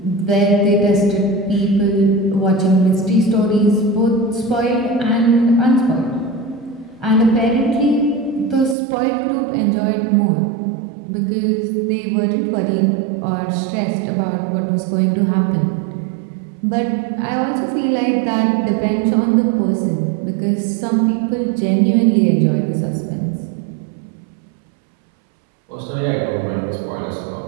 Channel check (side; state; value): left; drops out; at 8.8 s